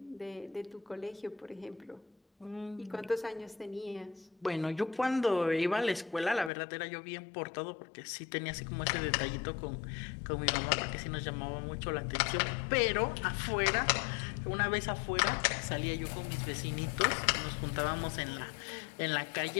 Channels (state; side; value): drops out; right; at 6.5 s